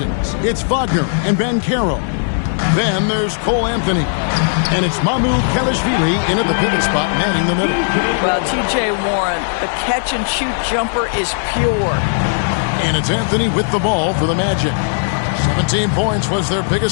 it's Wagner and Banchero. Then there's Cole Anthony. And it's Mamu Kelishvili in at the pivot spot, manning the middle. Well, T.J. Warren, the catch-and-shoot jumper is pure. And it's Anthony with the ball for the Magic. 17 points was their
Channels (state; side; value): silent; right; 68 dB below the other